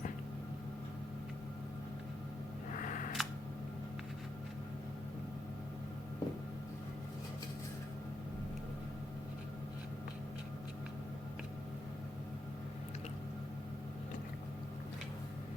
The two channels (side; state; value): both; normal; correlation 0.84